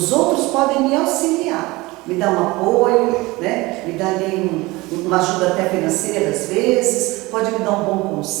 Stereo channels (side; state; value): left; quieter; 21.7 dB